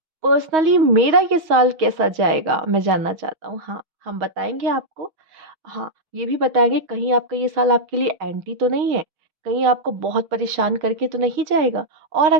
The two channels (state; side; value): late; left; 6.3 ms